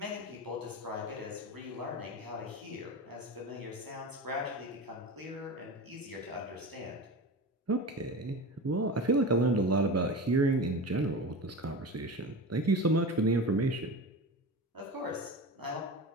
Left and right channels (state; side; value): normal; both; correlation 0.28